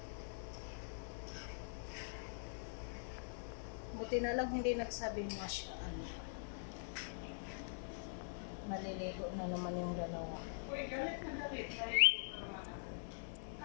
Buti na lang hindi nagsabi masya Allah. Maliligo na naman yung dalawa. Uy, galit na galit.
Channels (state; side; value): silent; right; digital silence